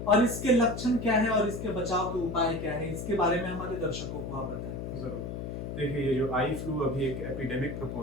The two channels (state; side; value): noise; left; hum, 6 dB below the sound